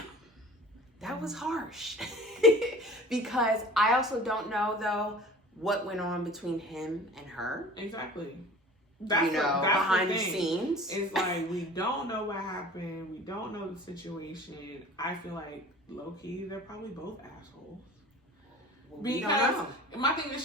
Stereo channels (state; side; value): normal; both; correlation 0.43